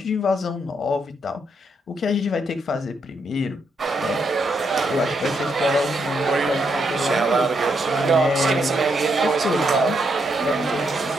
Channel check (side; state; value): both; normal; correlation 0.77